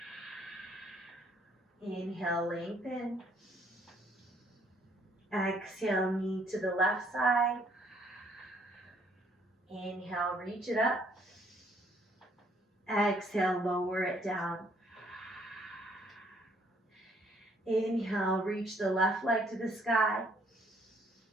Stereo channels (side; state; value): both; normal; correlation 0.65